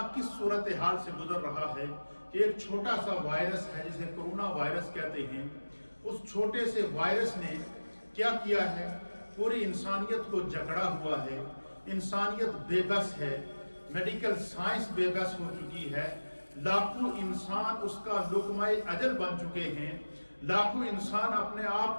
کس صورتحال سے گزر رہا ہے کہ ایک چھوٹا سا وائرس ہے جسے کرونا وائرس کہتے ہیں، اس چھوٹے سے وائرس نے کیا کیا ہے؟ پوری انسانیت کو جکڑا ہوا ہے، انسانیت بے بس ہے، میڈیکل سائنس بے بس ہو چکی ہے، لاکھوں انسان اس کا لقمہ اجل بن چکے ہیں، لاکھوں انسان اپنے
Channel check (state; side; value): inverted; both; correlation -1.00